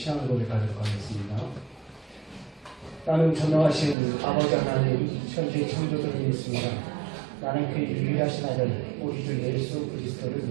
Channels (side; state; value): left; drops out; at 4.0 s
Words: 고백하도록 하겠습니다. 나는 전능하신 아버지 하나님 천지 창조주를 믿습니다. 나는 그의 유일하신 아들 우리 주 예수 그리스도를